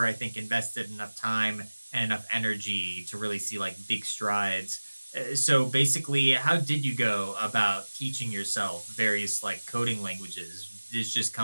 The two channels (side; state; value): both; inverted; correlation -1.00